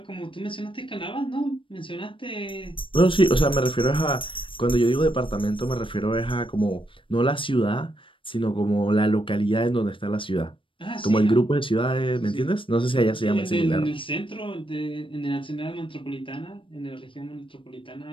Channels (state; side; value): late; right; 0.25 ms